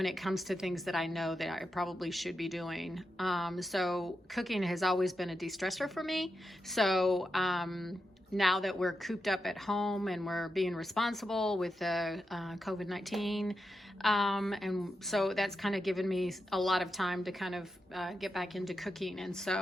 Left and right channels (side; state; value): both; normal; correlation 0.88